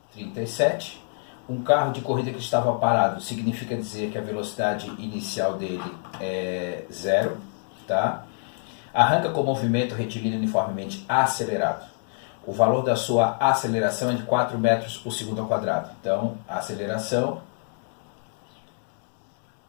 37, um carro de corrida que estava parado significa dizer que a velocidade inicial dele é 0, tá? Arranca com movimento retilíneo uniformemente acelerado. O valor da sua aceleração é de 4 metros por segundo ao quadrado. Então, a aceleração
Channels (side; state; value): right; silent; 59 dB below the other